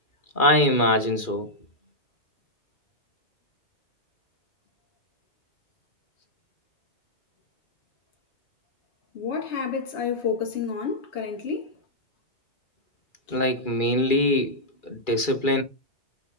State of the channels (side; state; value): right; late; 2.4 ms